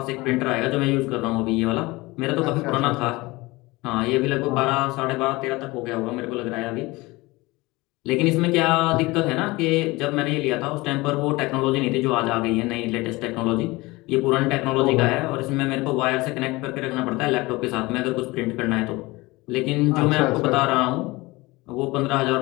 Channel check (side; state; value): right; quieter; 22.0 dB